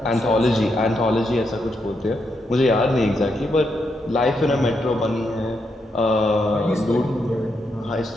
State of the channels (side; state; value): both; normal; correlation 0.81